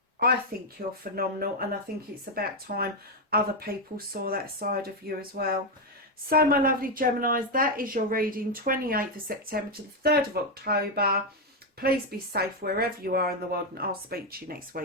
I think you're phenomenal, and I think it's about time other people saw that side of you as well. So my lovely Geminis, that is your reading, 28th of September to the 3rd of October. Please be safe wherever you are in the world, and I'll speak to you next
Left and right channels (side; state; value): both; normal; correlation 0.05